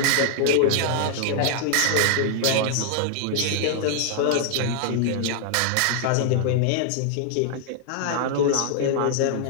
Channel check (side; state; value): both; different; correlation -0.01